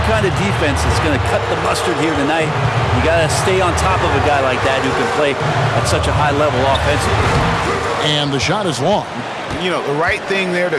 kind of defense that's going to cut the mustard here tonight. You got to stay on top of a guy like that who can play at such a high level offensively. And the shot is long. You know, the right thing there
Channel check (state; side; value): identical; both; correlation 1.00